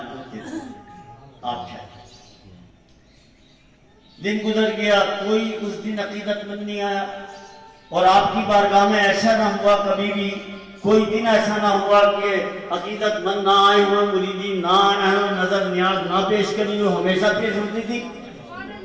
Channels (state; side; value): identical; both; correlation 1.00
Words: کو دے دوں، آپ ٹھہرے۔ دن گزر گیا، کوئی اس دن عقیدت مند نہیں آیا، اور آپ کی بارگاہ میں ایسا نہ ہوا، کبھی بھی کوئی دن ایسا نہ ہوا کہ عقیدت مند نہ آئے ہوئے، مریدین نہ آئے ہوئے، نظر نیاز نہ پیش کرنی ہو، ہمیشہ پیش ہوتی تھی۔